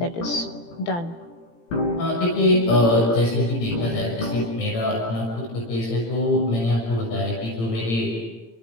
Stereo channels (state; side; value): late; right; 18 ms